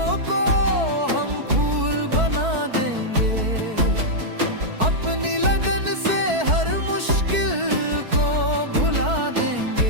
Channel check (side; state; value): left; late; 4.6 ms